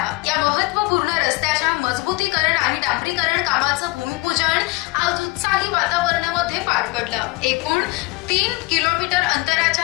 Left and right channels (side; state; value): right; quieter; 23.0 dB